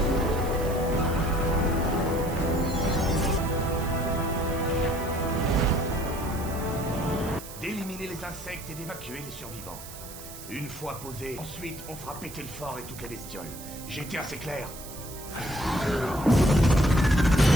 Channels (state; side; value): noise; right; hiss, 14 dB below the sound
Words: D'éliminer les insectes et d'évacuer les survivants. Une fois posé, ensuite on fera péter le fort et toutes les bestioles. J'ai été assez clair.